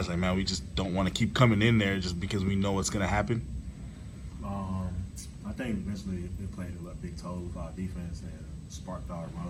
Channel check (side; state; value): both; identical; correlation 1.00